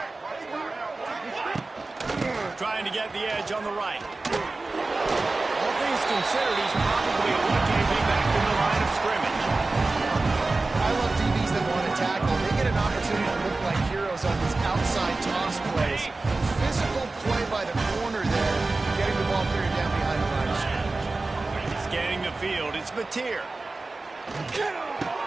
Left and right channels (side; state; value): left; quieter; 3.4 dB